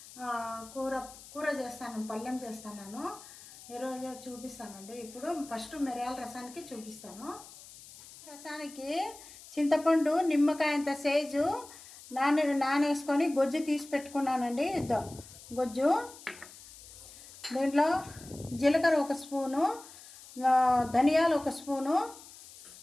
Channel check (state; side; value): noise; left; hiss, 18 dB below the sound